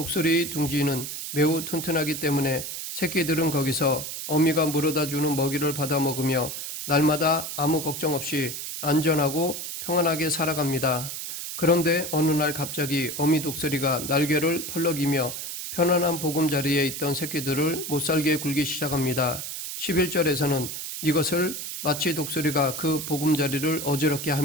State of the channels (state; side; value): noise; right; hiss, 6 dB below the sound